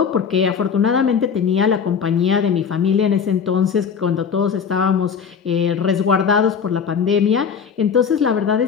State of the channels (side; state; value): right; quieter; 6.6 dB